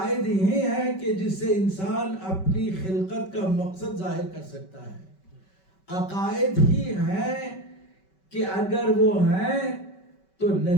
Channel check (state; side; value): late; right; 5.3 ms